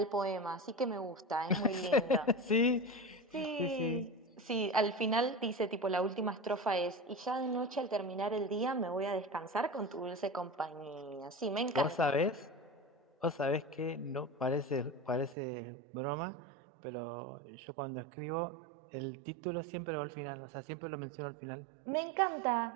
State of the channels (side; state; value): left; drops out; at 15.4 s